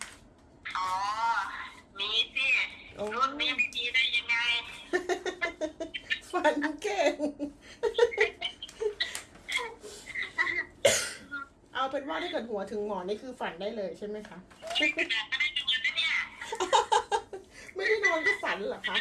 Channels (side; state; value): both; identical; correlation 1.00